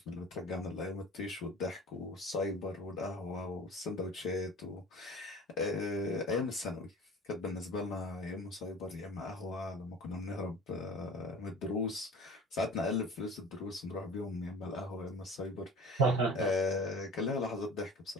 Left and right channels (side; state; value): both; normal; correlation 0.41